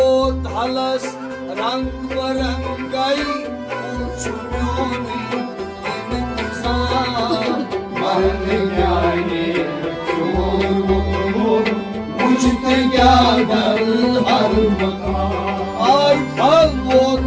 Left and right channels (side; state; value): both; identical; correlation 1.00